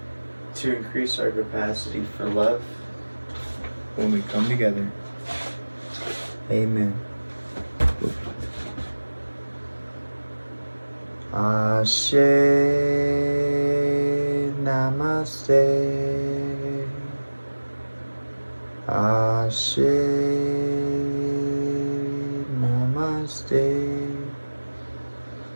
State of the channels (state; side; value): inverted; both; correlation -1.00